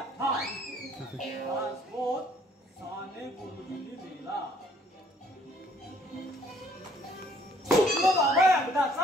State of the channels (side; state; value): both; normal; correlation 0.62